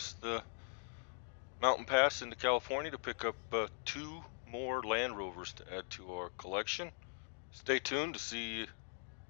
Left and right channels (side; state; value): right; silent; 51 dB below the other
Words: the mountain pass into California to pick up 2 more Land Rovers to add to our collection. Stay tuned to see